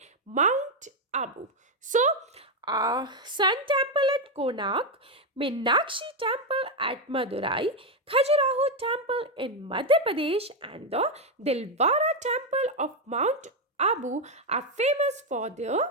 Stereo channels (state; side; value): normal; both; correlation 0.05